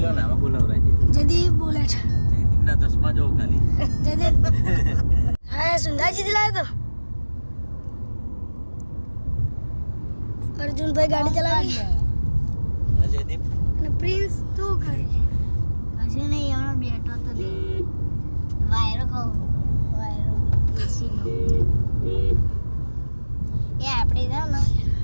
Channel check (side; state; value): both; inverted; correlation -1.00